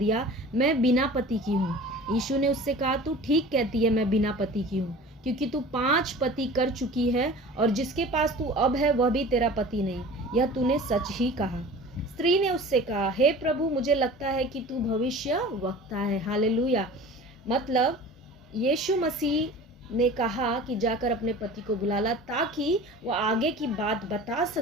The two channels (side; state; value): both; normal; correlation 0.40